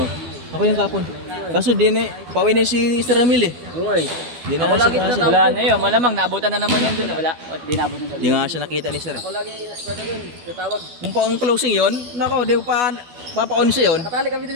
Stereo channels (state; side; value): late; left; 12 ms